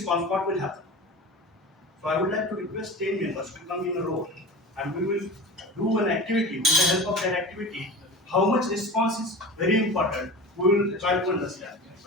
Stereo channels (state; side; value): normal; both; correlation 0.33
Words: what will happen. So I would like to request 10 members to come in a row and we will do an activity. With the help of that activity, how much response is very important, we will try to understand.